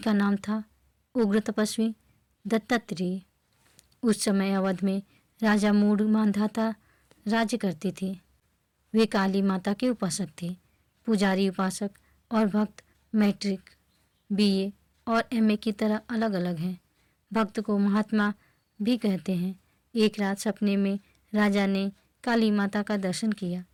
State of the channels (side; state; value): both; identical; correlation 1.00